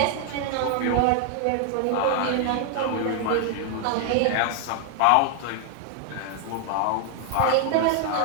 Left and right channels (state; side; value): different; both; correlation 0.00